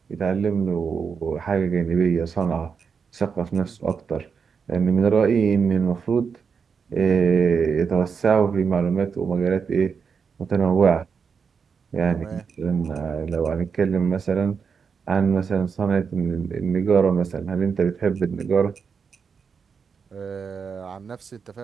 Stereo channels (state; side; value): quieter; left; 6.0 dB